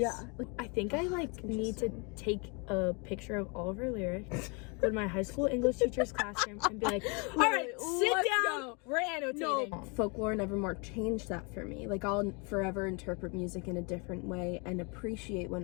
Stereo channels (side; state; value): right; quieter; 32.3 dB